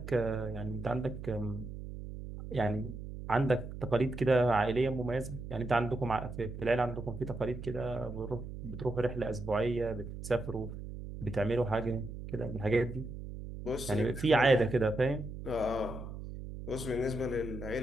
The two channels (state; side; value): noise; right; hum, 9 dB below the sound